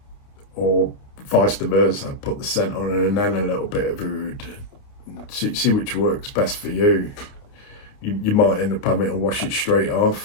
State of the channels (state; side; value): late; right; 28 ms